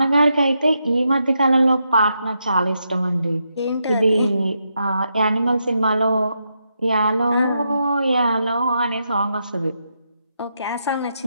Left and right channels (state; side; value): inverted; both; correlation -0.83